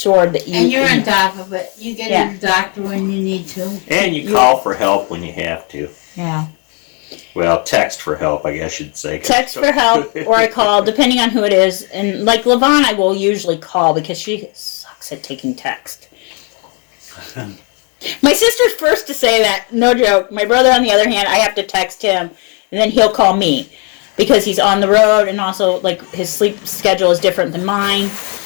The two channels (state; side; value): quieter; right; 35.7 dB